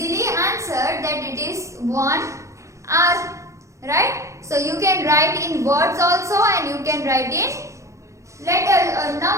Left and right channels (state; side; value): late; left; 0.15 ms